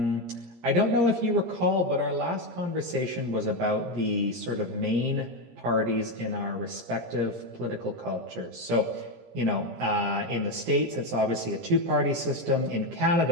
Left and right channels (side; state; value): left; late; 17 ms